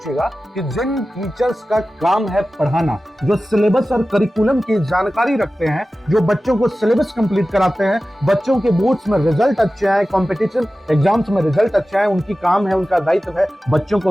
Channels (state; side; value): normal; both; correlation 0.95